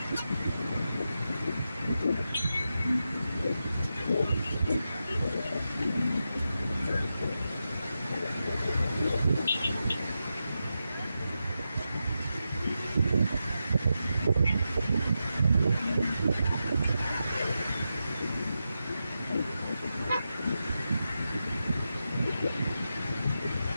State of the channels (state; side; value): inverted; both; correlation -0.89